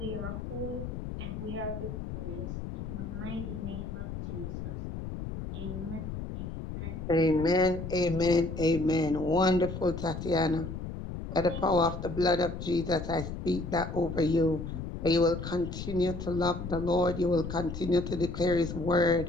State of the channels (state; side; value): noise; left; rumble, 7 dB below the sound